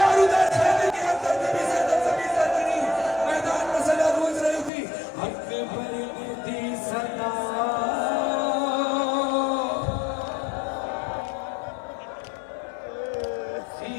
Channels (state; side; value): drops out; right; at 4.7 s